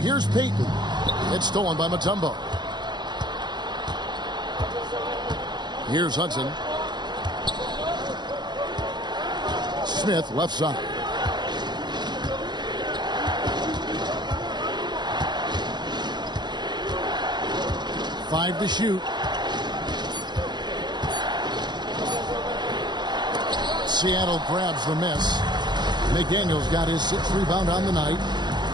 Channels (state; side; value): late; left; 0.21 ms